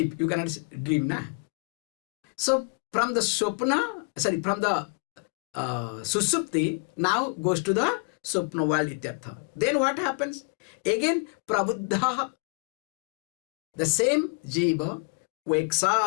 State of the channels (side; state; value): right; quieter; 33.7 dB